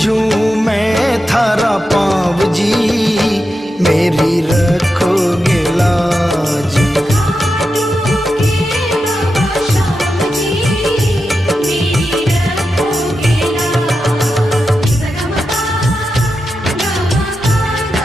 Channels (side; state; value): both; normal; correlation 0.89